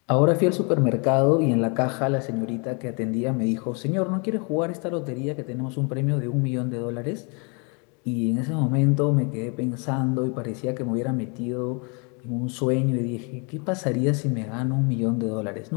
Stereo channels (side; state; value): right; quieter; 34.4 dB